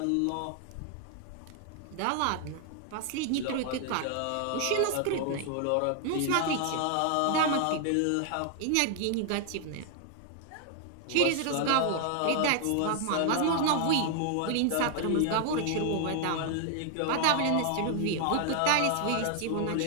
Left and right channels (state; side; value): different; both; correlation 0.00